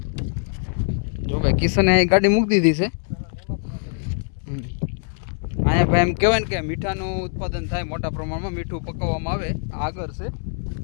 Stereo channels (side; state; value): right; silent; 62 dB below the other